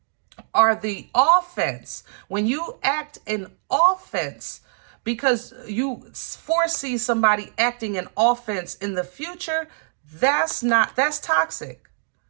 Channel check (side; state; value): left; silent; digital silence